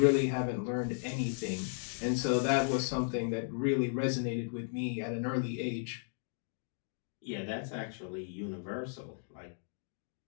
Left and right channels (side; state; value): right; silent; digital silence